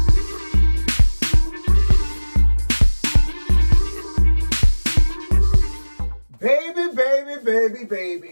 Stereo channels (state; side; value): inverted; both; correlation -1.00